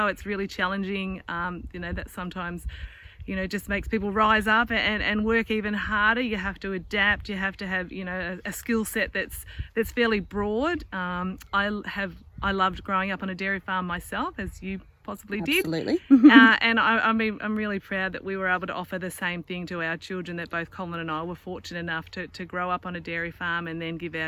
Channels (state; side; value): identical; both; correlation 1.00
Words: it's really challenging, that sometimes just makes people rise up and work even harder. You have to adapt. You have to have a skill set that's fairly broad. I loved growing up on a dairy farm myself, as you possibly did. Absolutely. And I'm really proud that we were able to offer the same thing to our children, that both Colin and I were fortunate enough to grow up on a dairy farm and then give